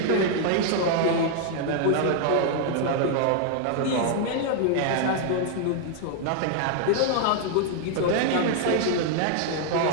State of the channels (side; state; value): both; different; correlation 0.00